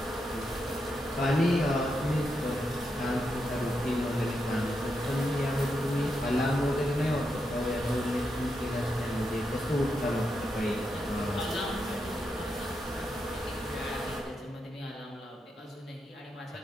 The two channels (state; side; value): normal; both; correlation 0.84